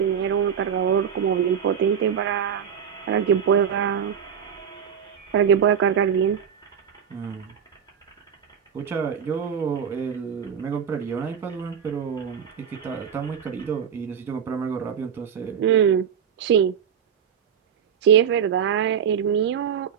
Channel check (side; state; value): left; quieter; 7.9 dB